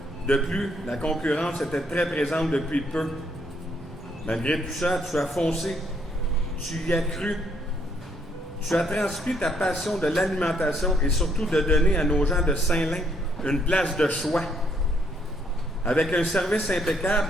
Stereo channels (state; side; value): normal; both; correlation 0.70